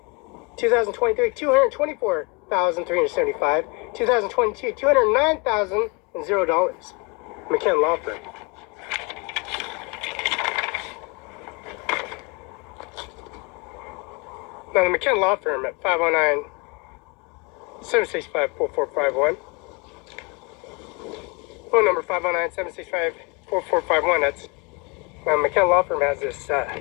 2023, 224,375. 2022, $209,000. McKenna Law Firm. Now the McKenna Law Firm at 509-765-4451. Phone number 509-765-4451. That's McKenna Law Firm has this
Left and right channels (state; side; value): quieter; right; 29.7 dB